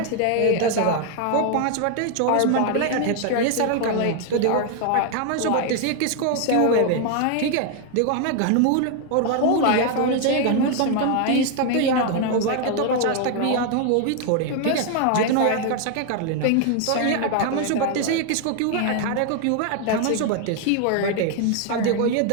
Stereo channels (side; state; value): both; different; correlation 0.00